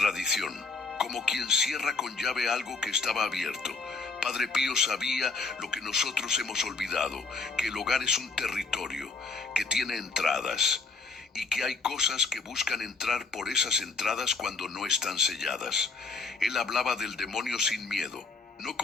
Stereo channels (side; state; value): right; quieter; 4.2 dB